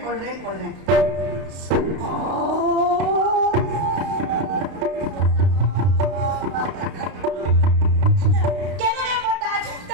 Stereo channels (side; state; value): left; late; 32 ms